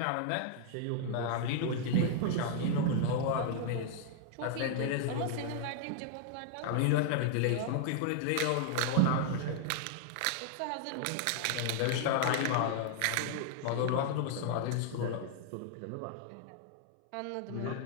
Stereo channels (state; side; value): different; both; correlation 0.00